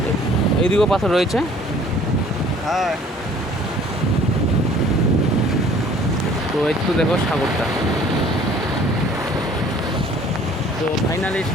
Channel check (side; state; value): both; normal; correlation 0.53